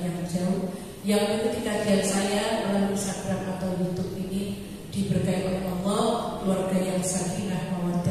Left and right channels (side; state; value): both; identical; correlation 1.00